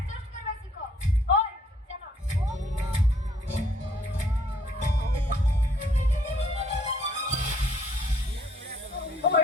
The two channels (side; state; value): both; normal; correlation 0.64